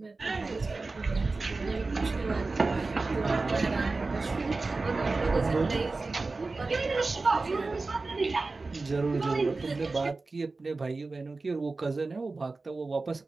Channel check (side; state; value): left; quieter; 3.6 dB